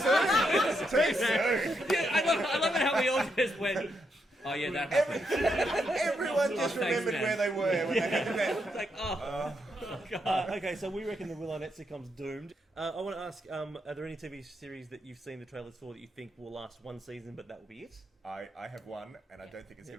soon. Too soon. Yeah, I love it how we all just went. Oh yeah, that happened. Everyone just thanks, remembered man. where they were when they had met. It's like, oh, Okay, so we reckon the Will Arnett sitcom's doomed. I want to ask, are there any TV series that you've seen the trailers for that you think will last one season, but that will be it? I have one, and I don't think it's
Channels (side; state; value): both; normal; correlation 0.80